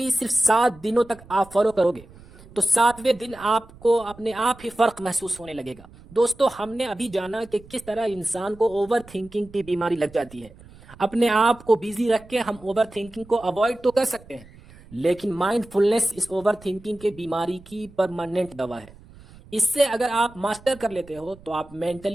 صرف 7 دنوں تک آپ فالو کرو گے تو 7ویں دن آپ کو اپنے آپ ہی فرق محسوس ہونے لگے گا۔ دوستو، ہم نے ابھی جانا کہ کس طرح انسان کو اوور تھنکنگ کی بیماری لگ جاتی ہے۔ اپنے آپ کو بیزی رکھ کے ہم اوور تھنکنگ کو اوائڈ تو کر سکتے ہیں، لیکن مائنڈ فلنس اس اوور تھنکنگ کے بیماری کی پرماننٹ دوا ہے۔ اس سے اگر آپ ماسٹر کر لیتے ہو تو آپ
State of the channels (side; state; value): right; noise; rumble, 22 dB below the sound